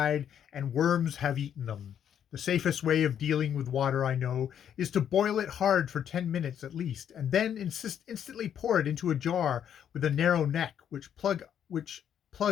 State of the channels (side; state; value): right; quieter; 9.2 dB